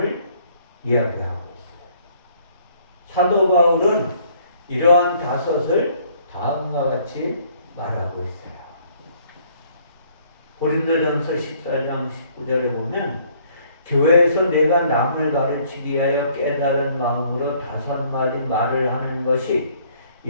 이야기하고 있어요. 사도 바울은 이러한 5을 다음과 같이 말하고 있어요. 고린도전서 14장 19절에 보면 교회에서 내가 남을 가르치기 위하여 깨달은 마음으로 5마디 말을 하는 것이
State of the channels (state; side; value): inverted; both; correlation -0.62